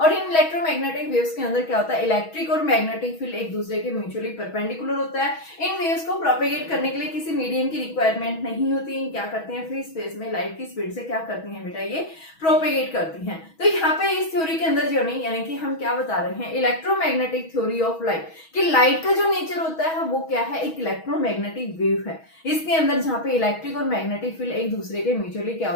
और इन इलेक्ट्रोमैग्नेटिक वेव्स के अंदर क्या होता है, इलेक्ट्रिक और मैग्नेटिक फील्ड एक दूसरे के म्यूचुअली परपेंडिकुलर होता है। इन वेव्स को प्रोपेगेट करने के लिए किसी मीडियम की रिक्वायरमेंट नहीं होती। क्या करते हैं, फ्री स्पेस में लाइट की स्पीड से क्या करती हैं बेटा, ये प्रोपेगेट करती हैं। तो यहाँ पे इस थ्योरी के अंदर जो नहीं, यानी कि हम क्या बता रहे हैं, इलेक्ट्रोमैग्नेटिक थ्योरी ऑफ लाइट, कि लाइट का जो नेचर होता है वो क्या है, एक इलेक्ट्रोमैग्नेटिक वेव है। इसके अंदर जहाँ पे इलेक्ट्रिक और मैग्नेटिक फील्ड एक दूसरे के म्यूचुअली क्या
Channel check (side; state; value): right; late; 6.2 ms